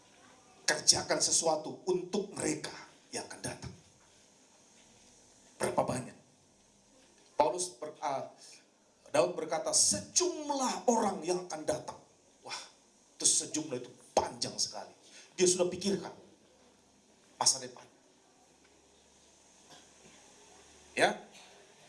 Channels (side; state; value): both; identical; correlation 1.00